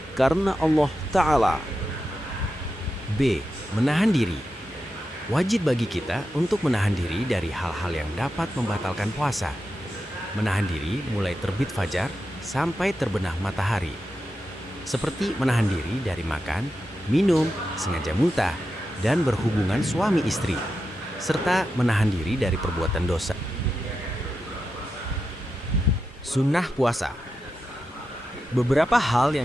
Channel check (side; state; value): both; normal; correlation 0.89